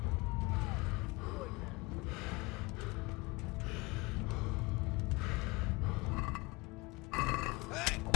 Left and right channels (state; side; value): quieter; right; 24.7 dB